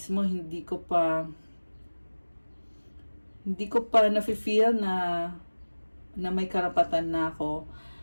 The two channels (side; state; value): both; inverted; correlation -1.00